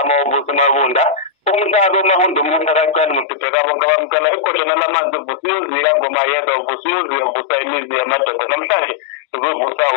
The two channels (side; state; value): right; drops out; at 3.2 s